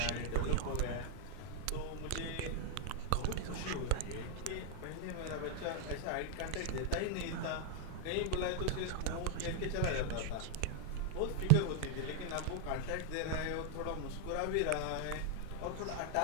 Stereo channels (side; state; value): both; different; correlation -0.01